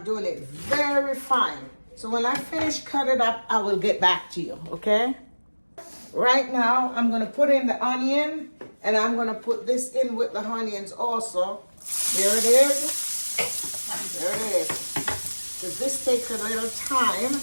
doing it very fine. So when I finish cut it up, I will get back to you, okay? Right now, I'm gonna put in the onion, and I'm gonna put this in with the onions also. There it is. There it is. Because this takes a little time,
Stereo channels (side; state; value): both; inverted; correlation -1.00